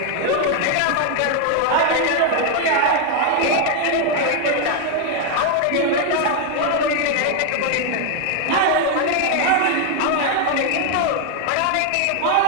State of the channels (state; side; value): different; both; correlation 0.01